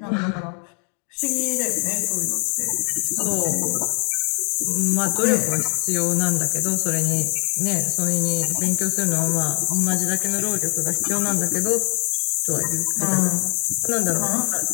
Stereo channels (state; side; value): quieter; right; 40.0 dB